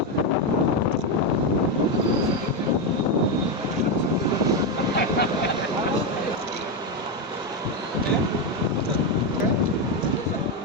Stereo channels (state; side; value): normal; both; correlation 0.08